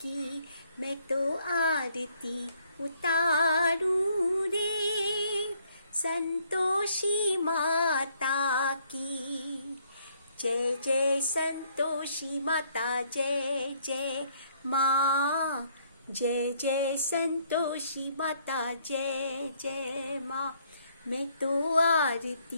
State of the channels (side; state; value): both; inverted; correlation -0.67